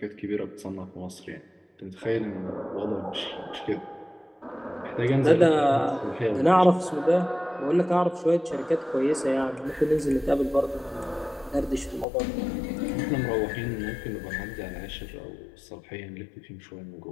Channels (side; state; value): right; drops out; at 12.1 s